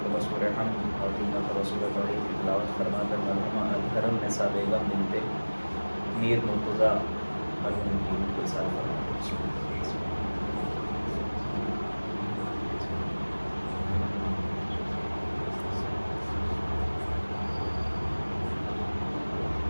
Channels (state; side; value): inverted; both; correlation -1.00